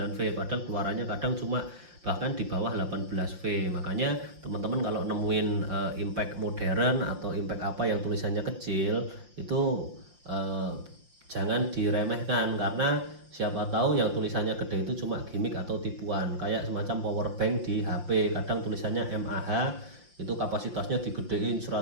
padahal keluarannya kadang cuma bahkan di bawah 18V. Makanya teman-teman kalau nemuin impact modern atau impact apa yang tulisannya kecil itu jangan diremehkan, karena siapa tahu yang tulisannya gede itu cuma gimmick atau tipuan, kayak semacam power bank di HP, kadang tulisannya mAh, itu kapasitasnya digedein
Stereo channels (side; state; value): left; late; 5.7 ms